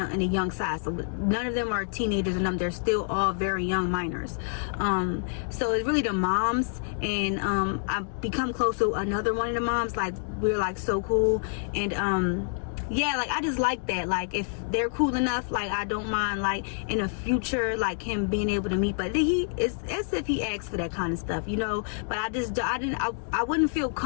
of in a young side, so none of them are teenagers, and they're still all very young minors. So it's really the moms, and I've become close to another one of the moms. Like, we're like so cool, and yeah, like I just like that. Like, if they're cool enough, like I don't mind, like in the future, like him being able to meet. But it's as if he asked for that kind of stuff, you know. But I wouldn't feel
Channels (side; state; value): right; silent; digital silence